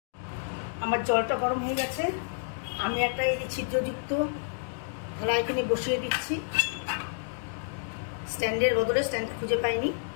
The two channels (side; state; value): right; silent; digital silence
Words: আমার জলটা গরম হয়ে গেছে। আমি একটা এই যে ছিদ্রযুক্ত থালা এখানে বসিয়ে দিচ্ছি। স্ট্যান্ডের বদলে স্ট্যান্ডটা খুঁজে পাইনি,